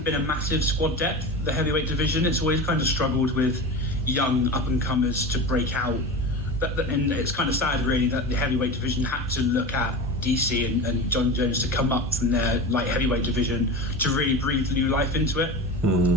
been a massive squad depth, the heavyweight division. It's always kind of struggled with young up-and-comers to break out. And it's kind of sad, really, that the heavyweight division had to look at DC and John Jones to come up from their light heavyweight division to really breathe new life into it.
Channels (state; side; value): normal; both; correlation 0.28